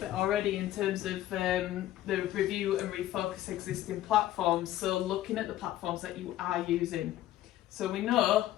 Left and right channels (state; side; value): quieter; right; 13.8 dB